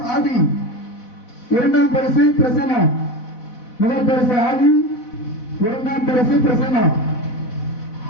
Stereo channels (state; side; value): late; right; 4.0 ms